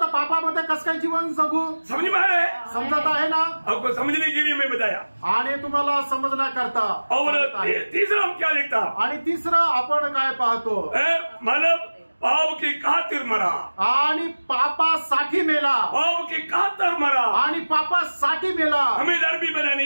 पापामध्ये कसं काय जीवन जगू? समझ में आ रहा है? समजत आहे ना? आपको समझने के लिए मैं बताया। आणि तुम्हाला समजण्याकरता। और तीसरा हम क्या लिखता? आणि तिसरं आपण काय पाहतो? मतलब पाप की खातिर मरा आणि पापासाठी मेला। पाप की खातिर मरा आणि पापासाठी मेला हमें धर्मी बनाने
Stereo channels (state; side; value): inverted; both; correlation -1.00